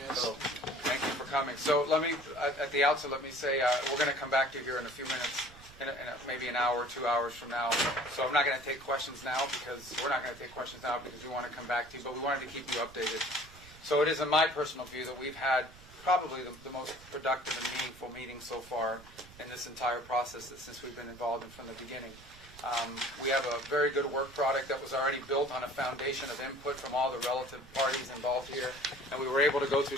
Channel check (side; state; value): right; noise; rumble, 21 dB below the sound